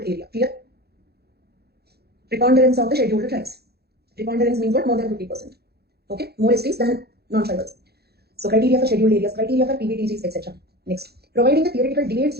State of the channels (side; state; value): left; late; 0.46 ms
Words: area. Clear? Preponderance of the scheduled tribes. Preponderance means what? More than 50%. Okay? More STs than non-tribals. So criteria for scheduled areas, criteria for PBTGs, etc. Next, providing the theoretical debates